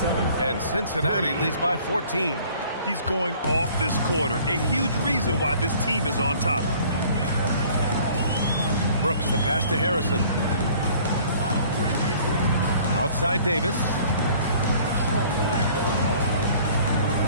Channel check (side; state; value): both; inverted; correlation -0.53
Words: And Cincinnati leads by 14. He's going off this quarter. A huge reason why this team is on top. Brooks, the pass to Harrison. Outside Davis.